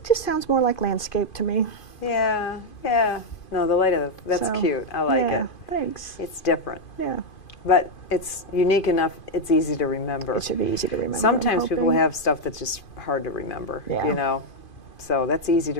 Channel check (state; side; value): late; right; 2.5 ms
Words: just sounds more like landscape to me. Yeah, yeah. No, the light of that's So, cute. I like yeah, it. Thanks. It's different, Yeah, but it's unique enough. It's easy to remember. it should be easy to remember. I'm Sometimes people hoping. have stuff that's just hard to remember. Yeah. So that's easy